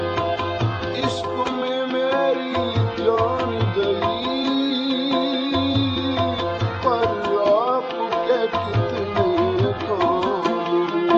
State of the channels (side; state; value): both; identical; correlation 1.00